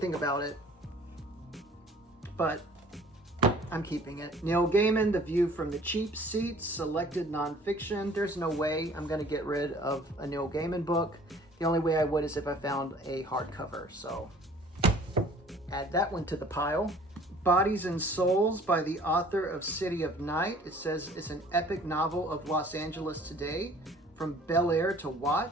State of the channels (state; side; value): normal; both; correlation 0.52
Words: about it, but I'm keeping it. Neil Gaiman, The View from the Cheap Seats, Selected Nonfiction. There's no way I'm going to get rid of a Neil Gaiman book. The only way I would is if I found a hardcover, so add that one to the pile. Bodies and Souls by the author of City of Night. It says it's an epic novel of Los Angeles today, from Bel Air to